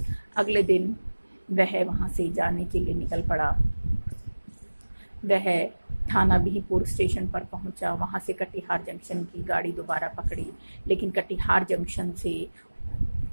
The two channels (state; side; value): inverted; both; correlation -1.00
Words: अगले दिन वह वहाँ से जाने के लिए निकल पड़ा। वह थाना बिहपुर स्टेशन पर पहुंचा, वहां से कटिहार जंक्शन की गाड़ी दोबारा पकड़ी, लेकिन कटिहार जंक्शन से